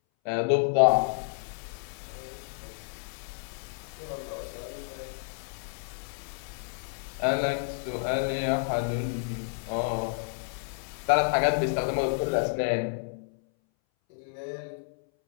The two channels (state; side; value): silent; right; 58 dB below the other